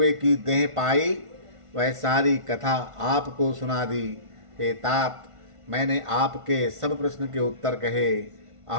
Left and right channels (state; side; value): late; left; 1.5 ms